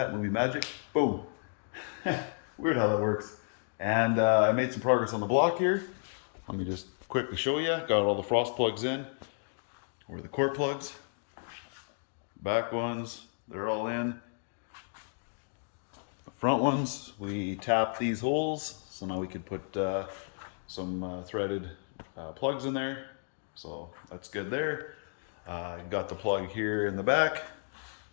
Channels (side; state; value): right; silent; 56 dB below the other